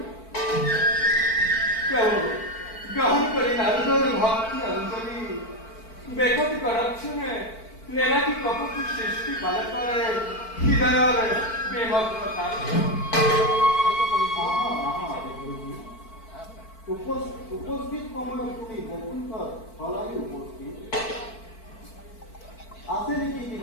प्रभु ग्रहण करी नारदर भक्ति अंजलि बेकति करक्षणे नेलाकी कपति सृष्टि बालकरे हृदयरे बेमग्नता উপস্থিত সময়ত তুমি বৈকুণ্ঠত হলালি উপস্থিত আছে নেকি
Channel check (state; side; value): late; right; 4.5 ms